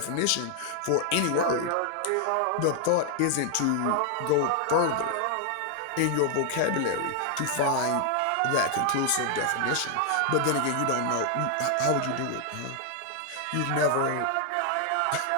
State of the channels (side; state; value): both; different; correlation 0.00